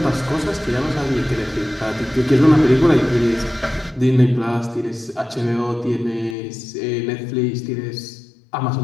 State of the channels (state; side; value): drops out; right; at 6.4 s